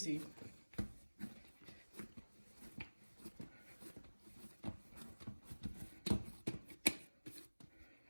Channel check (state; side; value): inverted; both; correlation -1.00